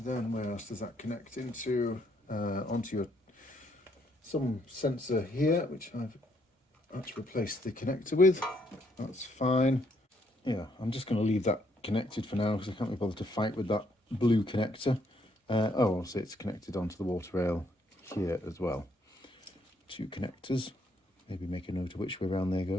where else does that connect into? Onto your some sensor here, which I've had to replace the connector with. That's fine. Yeah, I'm just going to leave that connected for now because I can't be bothered to fight with that blue connector. Oh, also it's connected onto the water rail here as well. 2 connectors. Maybe make a note of which way around they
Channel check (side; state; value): both; normal; correlation 0.71